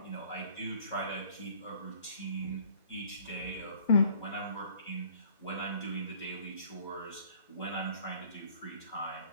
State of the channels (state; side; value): inverted; both; correlation -0.54